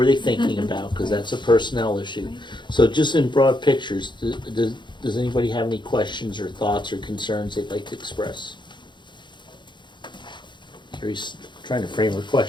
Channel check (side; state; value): right; late; 0.22 ms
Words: they thinking about, because that's a personnel issue. So just in broad pictures, does anybody have any questions or thoughts or concerns they'd like to express? Carrie's trying to frame her